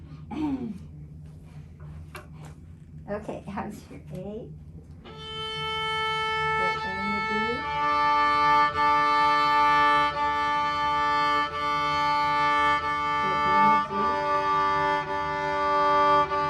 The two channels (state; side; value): identical; both; correlation 1.00